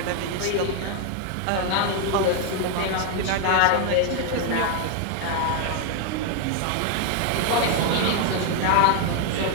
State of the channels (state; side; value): different; both; correlation 0.00